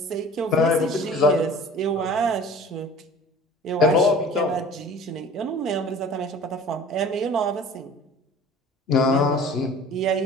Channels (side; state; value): both; normal; correlation 0.43